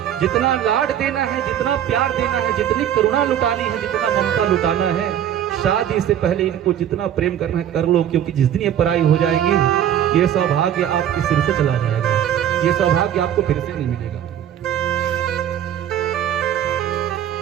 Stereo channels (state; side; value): quieter; left; 10.3 dB